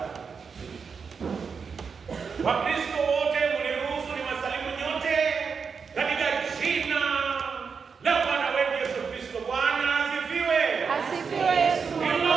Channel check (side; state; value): left; quieter; 5.7 dB